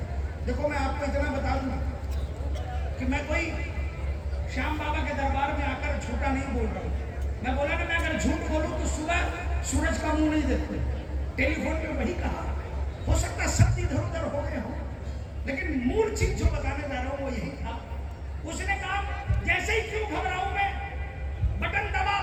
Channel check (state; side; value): identical; both; correlation 1.00